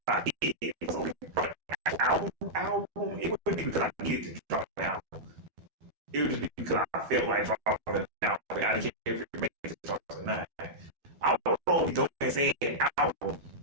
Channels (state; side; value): late; left; 13 ms